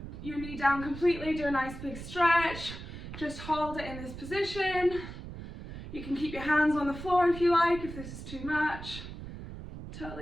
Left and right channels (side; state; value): right; noise; rumble, 11 dB below the sound